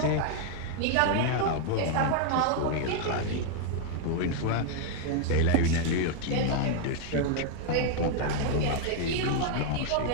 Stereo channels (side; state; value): both; different; correlation 0.00